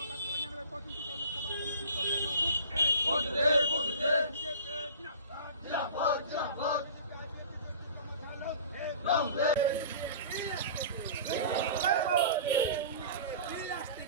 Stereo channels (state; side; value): inverted; both; correlation -0.41